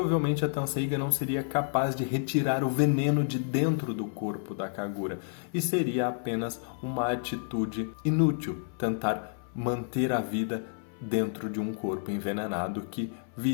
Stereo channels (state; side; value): silent; right; 58 dB below the other